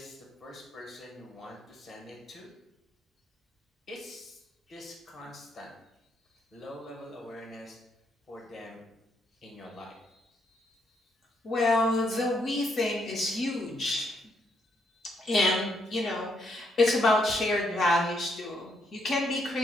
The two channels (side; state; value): both; normal; correlation 0.75